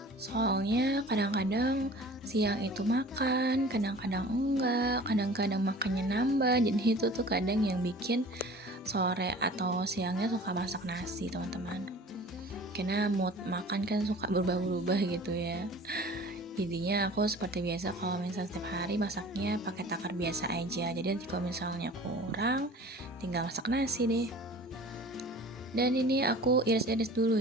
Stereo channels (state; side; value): normal; both; correlation 0.44